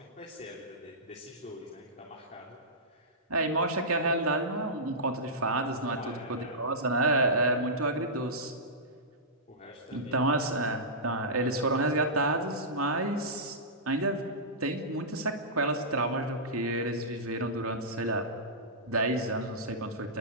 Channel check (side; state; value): both; normal; correlation -0.16